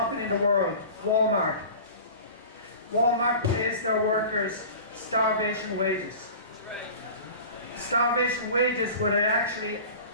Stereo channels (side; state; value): both; inverted; correlation -0.38